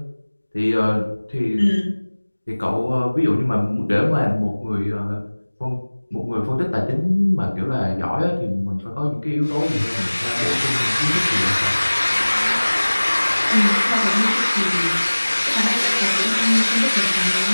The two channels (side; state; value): both; inverted; correlation -1.00